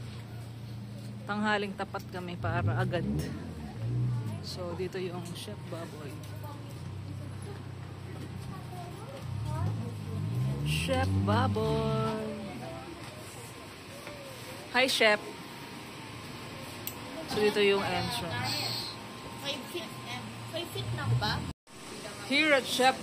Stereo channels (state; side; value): identical; both; correlation 1.00